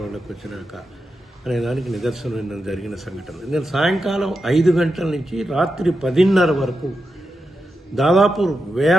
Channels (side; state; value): both; normal; correlation 0.88